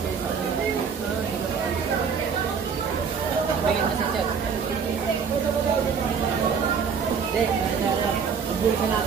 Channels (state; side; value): quieter; left; 6.3 dB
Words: Bigyan mo sa chat. Hindi, ubul ka